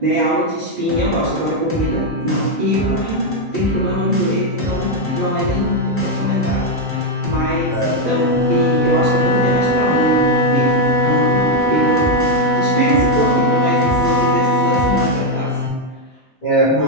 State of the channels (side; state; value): both; normal; correlation 0.03